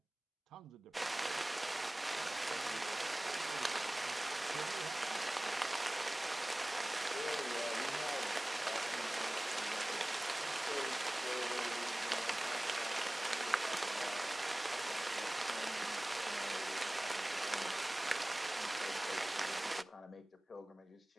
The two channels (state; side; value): normal; both; correlation 0.98